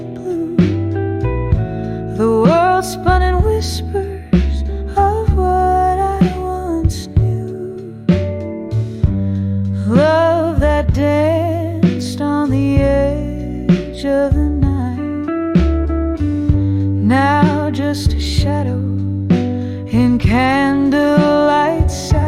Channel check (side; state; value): both; identical; correlation 1.00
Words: edge of the night. Now just a shadow in candlelight